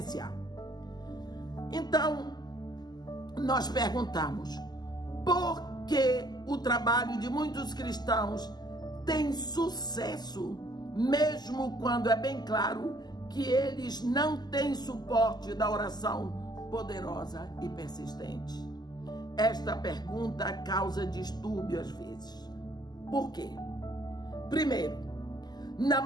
Então, nós perguntamos: por que o trabalho de muitos cristãos tem sucesso, mesmo quando é bem claro que eles não têm suporte da oração poderosa e persistente? Esta pergunta causa distúrbio às vezes. Por quê? Primeiro, na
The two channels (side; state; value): right; late; 0.20 ms